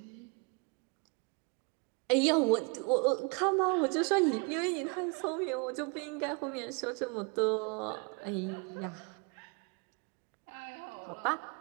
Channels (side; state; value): left; quieter; 33.9 dB